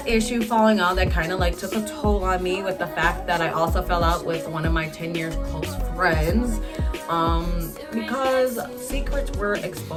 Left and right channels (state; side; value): identical; both; correlation 1.00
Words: issue falling out, that kind of like took a toll on me, with the fact that I also fell out with one of my 10 years close friends, because secrets were